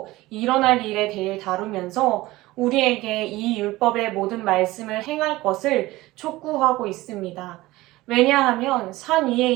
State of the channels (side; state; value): left; quieter; 18.6 dB